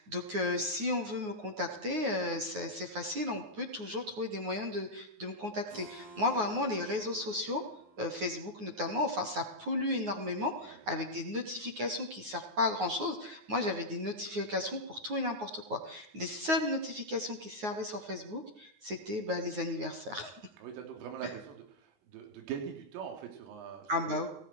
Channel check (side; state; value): left; late; 9.5 ms